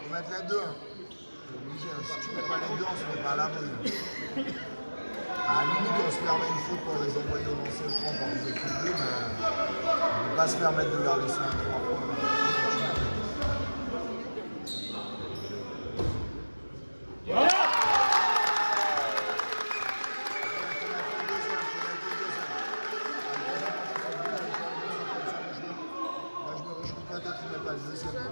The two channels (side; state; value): both; inverted; correlation -1.00